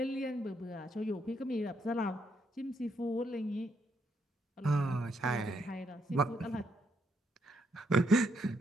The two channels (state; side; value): normal; both; correlation 0.76